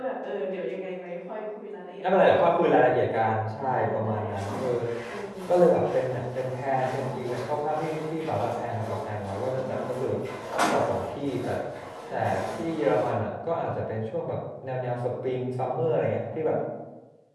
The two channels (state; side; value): identical; both; correlation 1.00